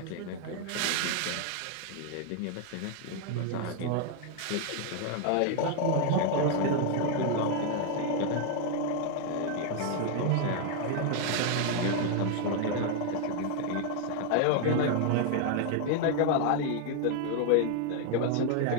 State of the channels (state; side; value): different; both; correlation 0.00